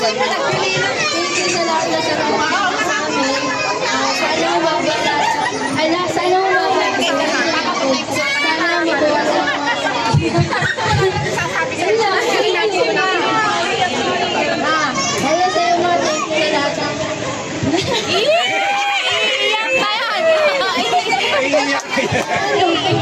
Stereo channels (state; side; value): identical; both; correlation 1.00